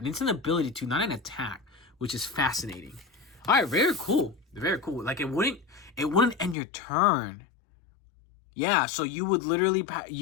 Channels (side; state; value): right; drops out; at 6.6 s